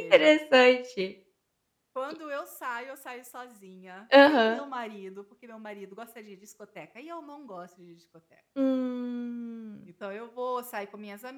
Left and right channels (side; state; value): both; identical; correlation 1.00